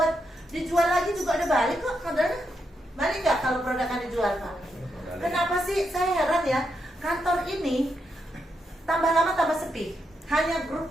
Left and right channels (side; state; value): both; normal; correlation 0.82